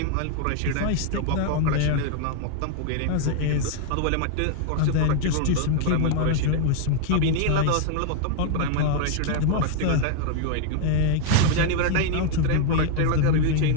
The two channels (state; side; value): different; both; correlation 0.00